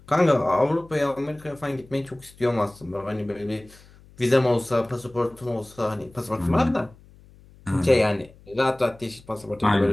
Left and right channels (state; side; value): noise; left; hum, 25 dB below the sound